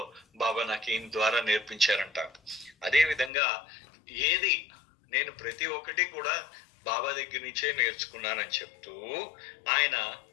బాబా నాకు ఈయన ద్వారా నేర్పించారంట. అదే విధంగా ఏది నేను ప్రతి ఒక్కటి కూడా బాబా దగ్గర నుంచే నేర్చుకున్నానని చెప్తూ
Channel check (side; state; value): right; drops out; at 3.3 s